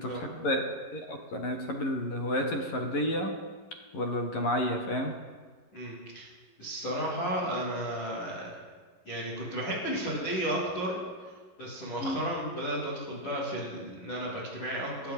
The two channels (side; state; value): right; late; 11 ms